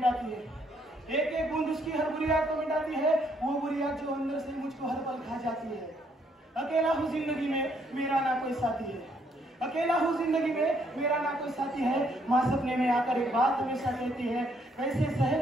है, एक एक बूंद उसकी हर बुरी आग को मिटाती है, वो बुरी आग जो अंदर से मुझको हर पल खा जाती है। अकेला हूँ जिंदगी में मेरा ना कोई साथी है, अकेला हूँ जिंदगी में मेरा ना कोई साथी है, माँ सपने में आकर एक बात हमेशा कहती है, कैसे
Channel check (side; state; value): both; normal; correlation 0.70